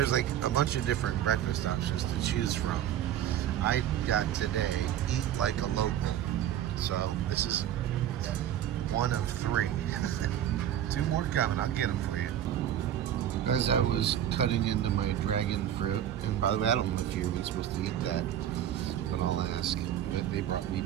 like a bunch of different breakfast options to choose from. I got today, eat like a local. So this is one of 3. 2 more coming, I'll get them for you. As I was cutting into my dragon fruit, and by the way, I don't know if you're even supposed to eat that, but I'll ask. They brought me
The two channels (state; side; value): quieter; left; 10.9 dB